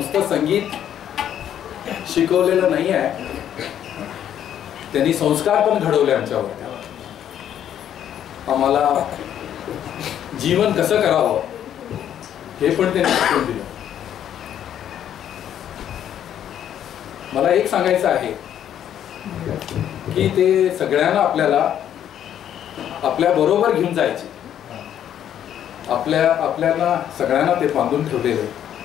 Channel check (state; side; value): quieter; right; 10.2 dB